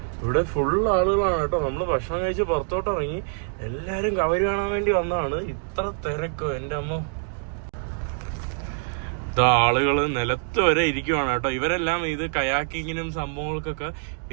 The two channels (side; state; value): left; silent; 62 dB below the other